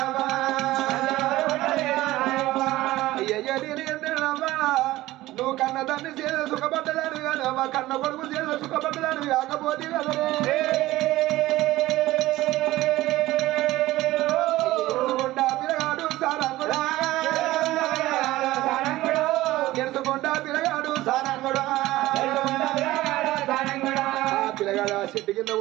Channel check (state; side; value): quieter; left; 17.0 dB